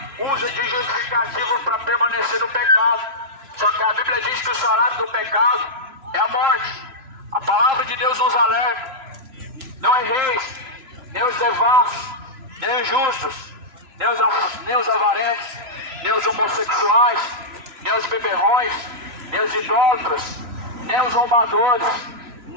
usa de justificativa para permanecer no pecado. Só que a Bíblia diz que o salário do pecado é a morte. A palavra de Deus nos alerta. Não é reis, nem os devassos, nem os justos, nem os avarentos, nem os homossexuais, nem os beberrões, nem os idólatras, nem os roubadores,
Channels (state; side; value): late; left; 3.0 ms